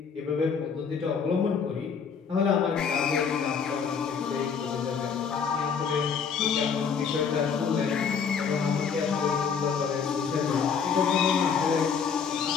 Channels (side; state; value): right; quieter; 6.4 dB